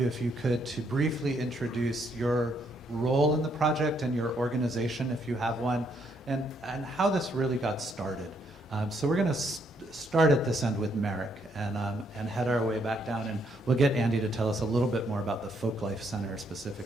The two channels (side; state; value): both; normal; correlation 0.72